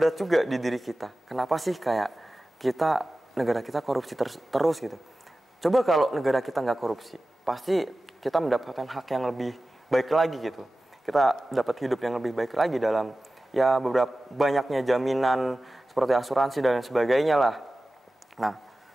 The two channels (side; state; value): both; normal; correlation 0.95